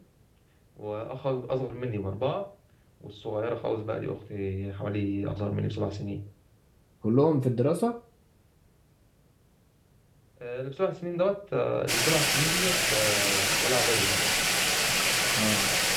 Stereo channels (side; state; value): both; identical; correlation 1.00